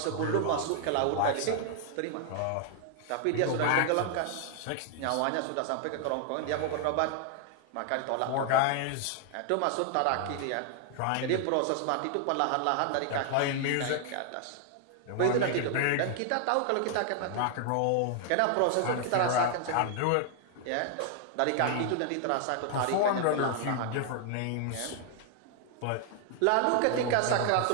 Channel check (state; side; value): different; both; correlation 0.00